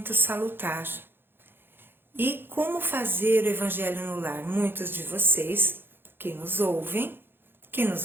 salutar. E como fazer o Evangelho no lar? Muitos de vocês que nos ouvem, que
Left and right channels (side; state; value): left; late; 0.10 ms